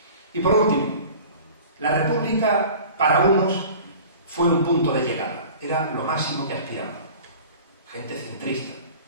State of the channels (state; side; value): inverted; both; correlation -0.42